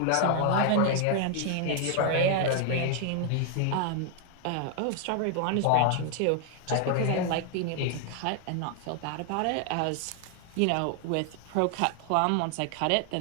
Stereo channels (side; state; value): both; different; correlation 0.00